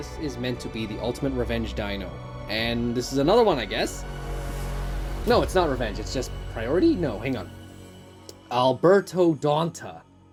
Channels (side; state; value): both; identical; correlation 1.00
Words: is meant to be the ultimate revenge dino. And this is another one, I guess. No, it's not revenge, it's just priority? No, hang on. Alberto Donta.